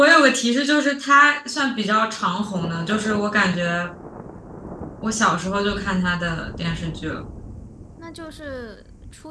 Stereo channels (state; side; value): identical; both; correlation 1.00